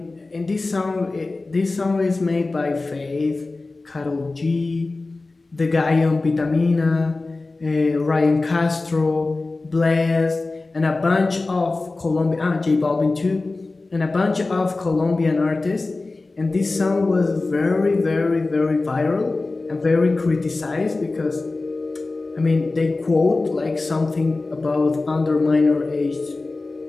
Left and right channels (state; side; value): quieter; right; 3.4 dB